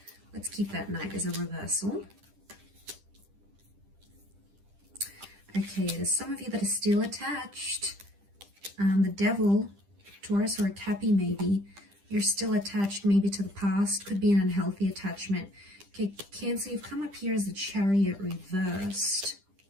keep that Knight as a reversal. Okay, there's some of you that are still attached. The Devil, Taurus, or a Cappy maybe. You're still attached maybe to the past. Could be an unhealthy attachment. Okay, Cancer, you've come up here as the Chariot reversed.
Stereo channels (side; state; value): left; late; 10 ms